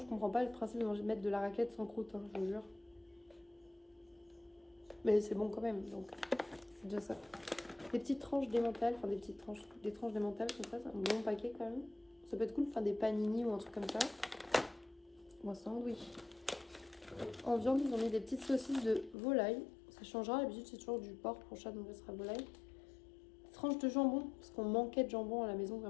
je comprends pas le principe de mettre de la raclette sans croûte, hein, je vous jure. Mais c'est bon quand même, donc c'est déjà ça. Des petites tranches d'émental, enfin des tranches d'émental comme ça, c'est un bon paquet quand même. Ça peut être cool de faire des panini ou un truc comme ça. Ou un sandwich. En viande, ils ont mis des petites saucisses de volaille. Ça changera, d'habitude c'est toujours du porc pour Chat, donc ça sera volaille. Tranches de jambon, parce qu'on manquait de jambon à la maison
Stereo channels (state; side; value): drops out; right; at 19.2 s